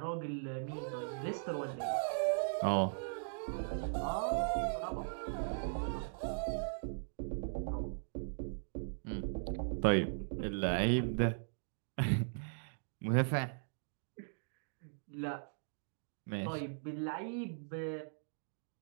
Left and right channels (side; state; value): left; silent; digital silence